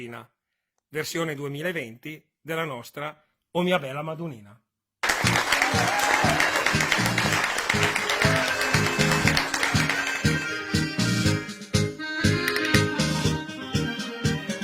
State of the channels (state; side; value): identical; both; correlation 1.00